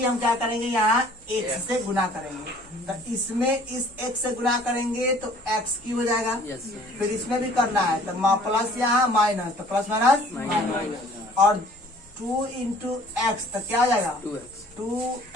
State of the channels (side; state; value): both; normal; correlation 0.53